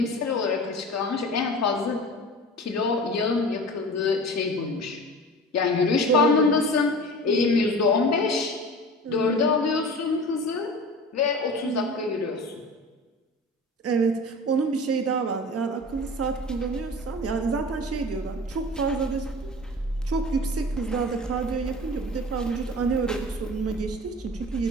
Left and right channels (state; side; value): normal; both; correlation 0.36